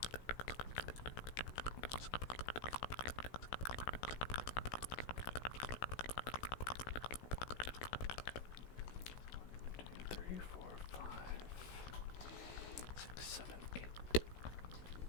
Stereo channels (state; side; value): late; right; 16 ms